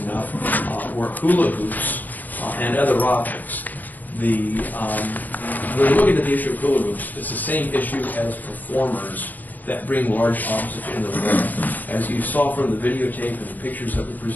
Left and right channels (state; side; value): late; right; 0.084 ms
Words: enough, were hula hoops and other objects. When we're looking at the issue of hula hoops, it's the same issue as performers that bring large objects into the wall. As you saw from the videotape and the pictures that were